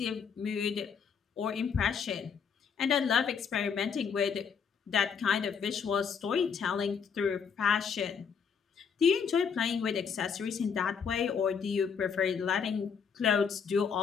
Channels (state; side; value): quieter; right; 6.5 dB